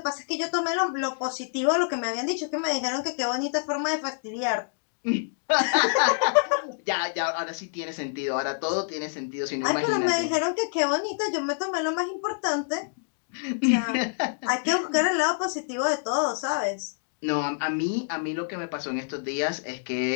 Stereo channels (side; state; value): right; silent; digital silence